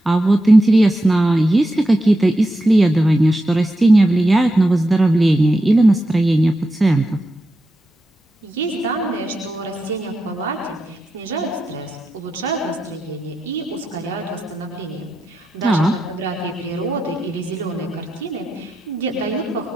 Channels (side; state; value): both; normal; correlation 0.88